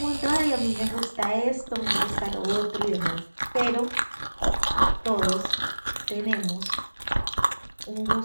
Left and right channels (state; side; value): inverted; both; correlation -1.00